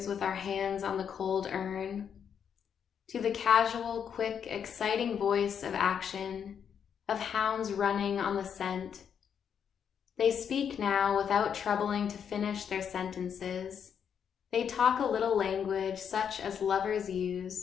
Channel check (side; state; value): right; quieter; 7.8 dB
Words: with our hands on the cold urn. To the casual, quick, exciting voice of action, of hounds running on the scent. They speak now without troubling to finish their sentences. They talk a little language such as lovers